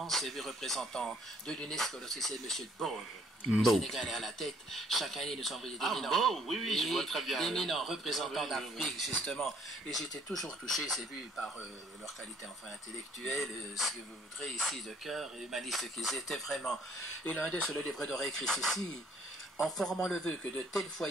élu représentant de l'UNESCO, lorsque c'est M. Bow. Le Sénégal est à la tête. Chaque année, nous envoyons des éminents. Oui, je vois très bien. D'éminents représentants d'Afrique, justement. Et j'étais toujours touché, c'est vu, par leur qualité enfin intellectuelle, ce que vous voudrez ici de cœur, et humaniste qu'ils étaient vraiment. Et l'un d'eux, sur le livre d'or écrit ceci, en formant le vœu que de tels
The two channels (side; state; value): both; normal; correlation 0.62